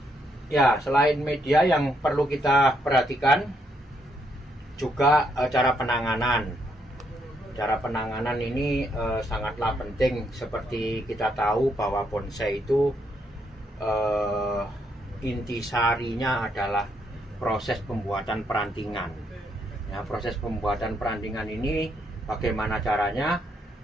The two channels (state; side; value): normal; both; correlation 0.75